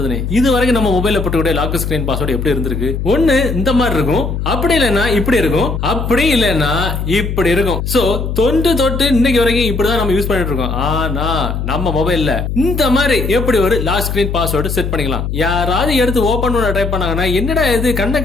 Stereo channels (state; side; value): noise; left; hum, 3 dB below the sound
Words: இது வரைக்கும் நம்ம மொபைல்ல போட்டுக்கூடிய லாக் ஸ்கிரீன் பாஸ்வேர்டு எப்படி இருந்திருக்கு? ஒண்ணு இந்த மாதிரி இருக்கும், அப்படி இல்லைன்னா இப்படி இருக்கும், அப்படி இல்லைன்னா இப்படி இருக்கும். சோ தொட்டு இன்னைக்கு வரைக்கும் இப்படிதான் நம்ம யூஸ் பண்ணிட்டு இருக்கோம். ஆனா நம்ம மொபைல்ல இந்த மாதிரி எப்படி ஒரு லாக் ஸ்கிரீன் பாஸ்வேர்டு செட் பண்ணிக்கலாம்? யாராவது எடுத்து ஓபன் பண்ண ட்ரை பண்ணாங்கன்னா என்னடா இது கண்ணை